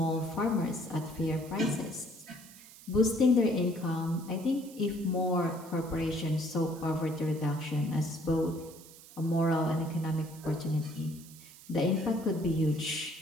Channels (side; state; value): right; noise; hiss, 20 dB below the sound